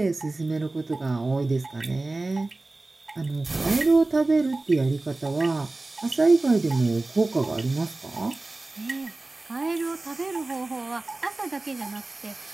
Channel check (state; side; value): quieter; left; 3.1 dB